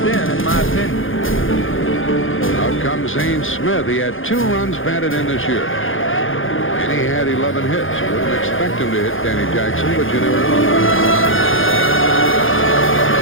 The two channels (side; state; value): right; late; 0.58 ms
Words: then, in my opinion. Out comes Zane Smith. He had 2 runs batted in this year. And he had 11 hits. You wouldn't expect him to hit Danny Jackson, but you never know.